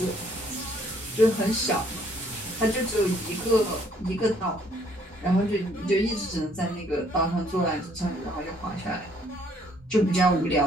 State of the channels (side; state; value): both; normal; correlation 0.64